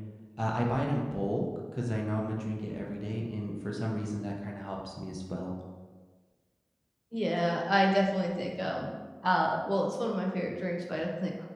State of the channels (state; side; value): identical; both; correlation 1.00